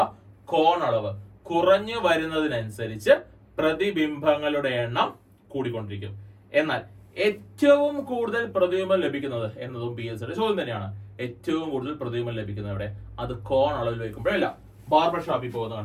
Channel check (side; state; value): both; identical; correlation 1.00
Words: കോണളവ് കുറഞ്ഞു വരുന്നതിനനുസരിച്ച് പ്രതിബിംബങ്ങളുടെ എണ്ണം കൂടിക്കൊണ്ടിരിക്കും. എന്നാൽ ഏറ്റവും കൂടുതൽ പ്രതിബിംബം ലഭിക്കുന്നത് എന്നതും PSCയുടെ ചോദ്യം തന്നെയാണ്. ഏറ്റവും കൂടുതൽ പ്രതിബിംബം ലഭിക്കുന്നത് എവിടെ? അത് കോൺ അളവിൽ വയ്ക്കുമ്പോഴല്ല, ബാർബർ ഷോപ്പിൽ പോകുന്ന